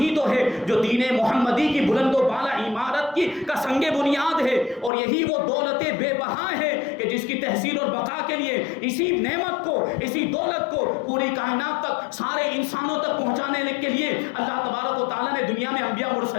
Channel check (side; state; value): right; drops out; at 4.9 s